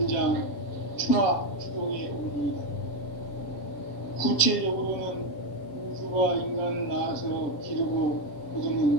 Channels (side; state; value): right; late; 7.1 ms